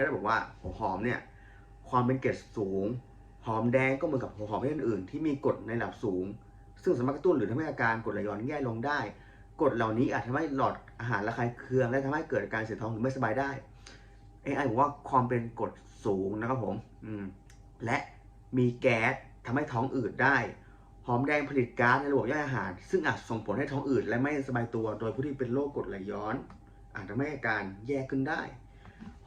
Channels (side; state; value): both; identical; correlation 1.00